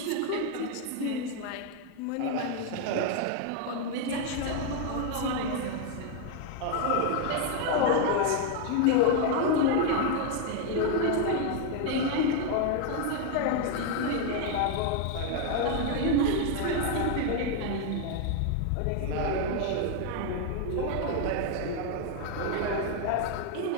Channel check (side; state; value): both; different; correlation 0.01